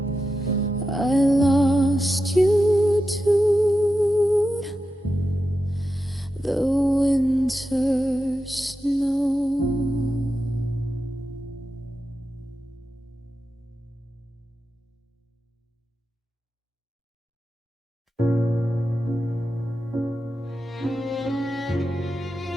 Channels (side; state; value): both; normal; correlation 0.90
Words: I lost you to the winter snow.